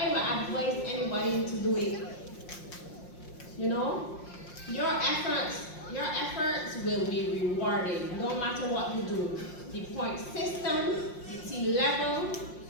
would advise anybody to do it. You know, your efforts will be rewarded no matter what you do. The point system, the T level,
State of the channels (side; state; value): right; late; 5.6 ms